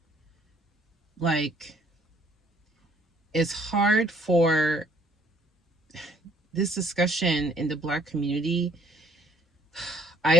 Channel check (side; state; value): both; normal; correlation 0.62